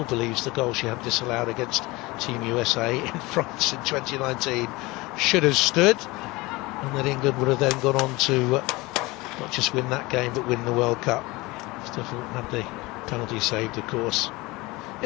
believes the goal she had disallowed against Team USA in France in 2019 should have stood, and that England would have then gone on to not just win that game but win the World Cup. Stifford had the penalty saved, of course.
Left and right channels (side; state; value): right; quieter; 22.3 dB